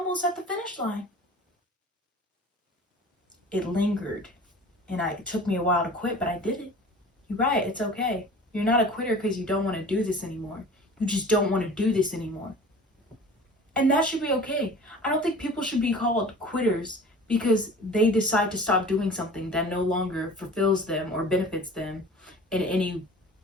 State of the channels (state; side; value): normal; both; correlation 0.41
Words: at the finish line. It lingered, and it took me a while to quit, but I did it. You're right, it's okay. You're not a quitter because you don't want to do this anymore. You just don't want to do this anymore. And that should be okay. I don't think people should be called quitters because they decide to stop doing something that no longer fulfills them or benefits them in any